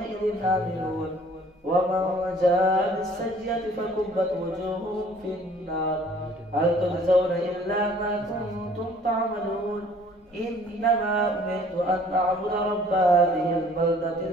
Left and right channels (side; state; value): both; normal; correlation 0.55